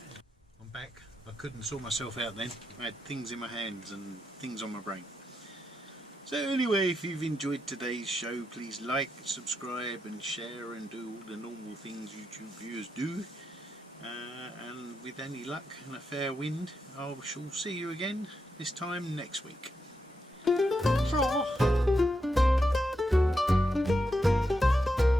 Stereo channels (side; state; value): both; normal; correlation 0.84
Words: I'm back. I couldn't sort myself out then. I had things in my hands and things on my brain. So anyway, if you've enjoyed today's show, please like, subscribe and share and do all the normal things YouTube viewers do. And with any luck and a fair wind, I shall see you again this time next week.